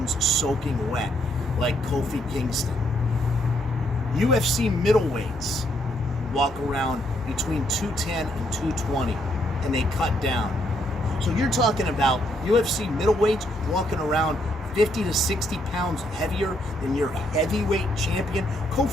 soaking wet like Kofi Kingston. UFC middleweights walk around between 210 and 220 and they cut down. So you're talking about UFC middleweights walking around 50 to 60 pounds heavier than your heavyweight champion.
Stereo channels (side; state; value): both; normal; correlation 0.73